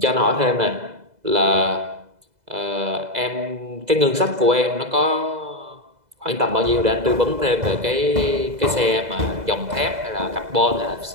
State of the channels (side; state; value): left; late; 2.0 ms